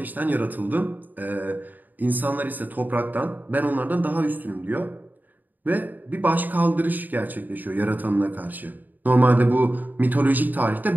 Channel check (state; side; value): late; left; 0.086 ms